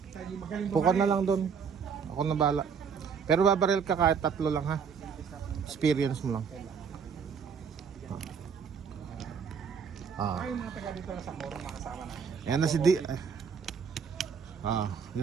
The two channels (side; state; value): left; quieter; 6.4 dB